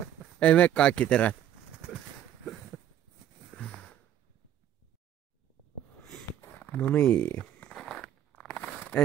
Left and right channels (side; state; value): left; quieter; 10.9 dB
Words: Ei mene kaikki terät. No niin.